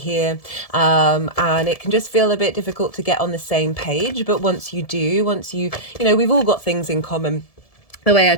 and it can just feel a bit difficult to get on the same page. But once you, we've all got things in common. The way I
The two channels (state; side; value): late; right; 1.7 ms